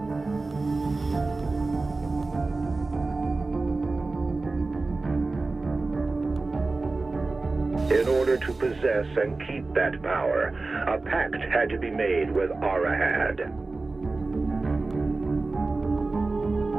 In order to possess and keep that power, a pact had to be made with Arahad.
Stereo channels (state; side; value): quieter; left; 3.5 dB